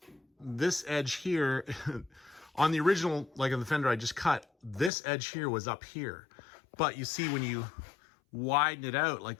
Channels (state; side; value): drops out; right; at 4.9 s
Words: edge here on the original, like on the fender I just cut, this edge here was up here. But you see when you widen it out like